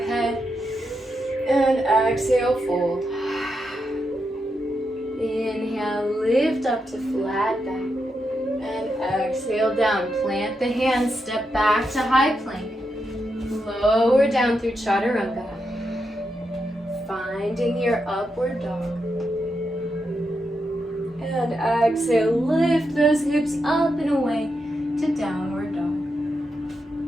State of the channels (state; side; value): normal; both; correlation 0.85